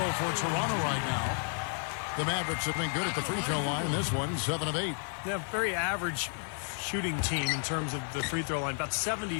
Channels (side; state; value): right; silent; 57 dB below the other